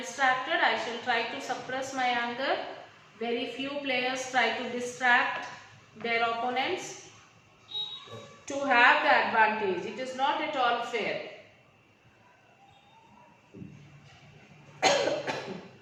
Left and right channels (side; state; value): both; identical; correlation 1.00